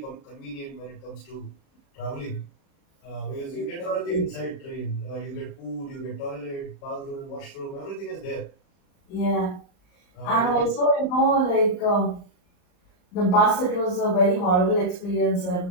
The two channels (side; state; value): right; late; 39 ms